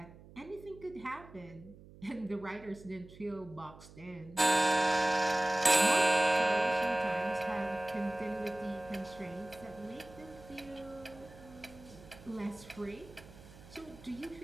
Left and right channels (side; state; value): right; noise; hum, 20 dB below the sound